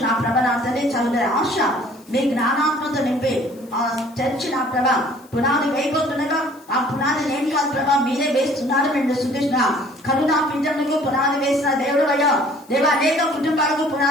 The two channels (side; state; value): left; noise; hiss, 27 dB below the sound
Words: నా ప్రభ నా తల్లి చదువుతున్న ఆశ మీ జ్ఞానాత్మతో నింపి ఆ చర్చి నా ప్రభ పునాది వేయబోతుండగా ఆ పునాది నేను కాదు ప్రభా మీరే వేస్తున్నారు. మేము స్తుతిస్తున్నాం. కరుణా పింఛన్లకు పునాది వేసిన దేవుడు అయ్యా దేవా, అనేక కుటుంబాలకు